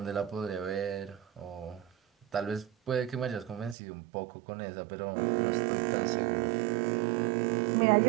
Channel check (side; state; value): left; drops out; at 3.8 s